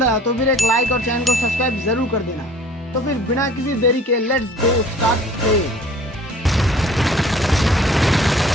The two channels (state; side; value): normal; both; correlation 0.49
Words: आया तो फिर एक लाइक और चैनल को सब्सक्राइब जरूर कर देना। तो फिर बिना किसी देरी के लेट्स गो स्टार्ट प्ले।